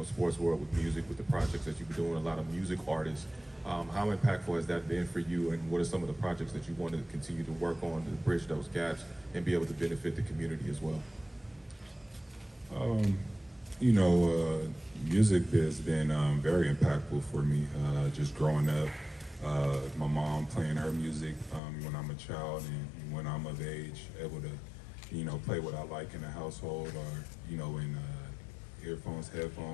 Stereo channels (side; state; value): right; drops out; at 21.6 s